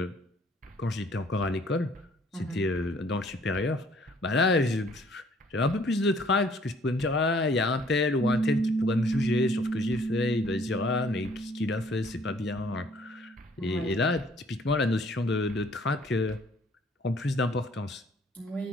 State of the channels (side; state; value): both; normal; correlation 0.60